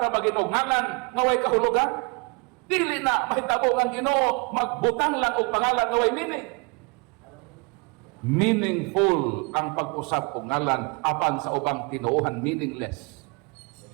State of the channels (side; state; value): left; quieter; 31.4 dB